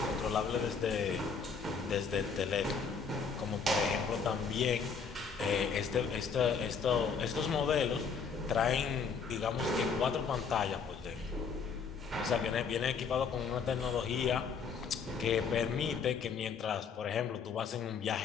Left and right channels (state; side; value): quieter; right; 5.8 dB